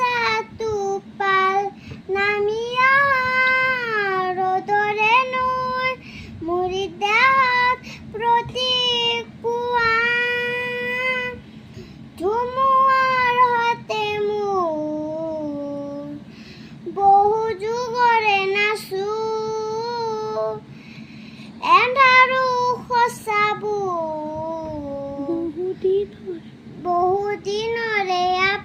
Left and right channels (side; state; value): both; identical; correlation 1.00